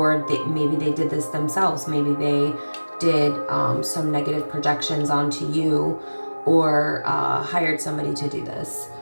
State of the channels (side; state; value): both; inverted; correlation -1.00